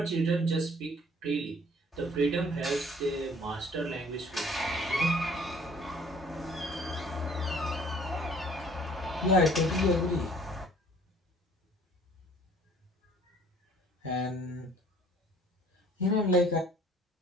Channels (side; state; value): both; normal; correlation 0.55